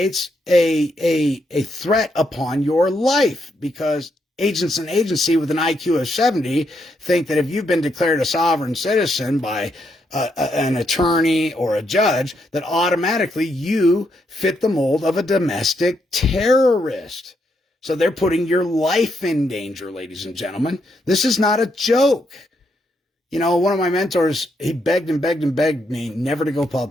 a threat upon your life because agents and agency with an IQ of 70 think that if you've been declared a sovereign citizen by an attorney or a judge, that automatically you fit the mold of a domestic terrorist. So they're putting your life in danger, ladies and gentlemen. This is not a joke. one of my mentors, he begged and begged and begged me never to go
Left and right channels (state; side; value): normal; both; correlation 0.78